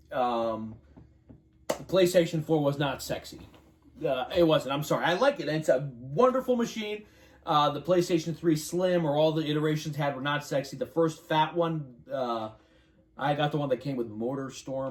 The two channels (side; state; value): both; identical; correlation 1.00